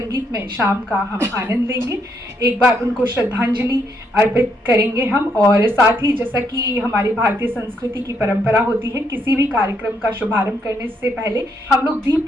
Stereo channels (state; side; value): normal; both; correlation 0.75